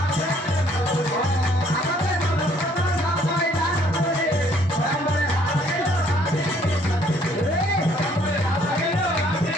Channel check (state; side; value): normal; both; correlation 0.63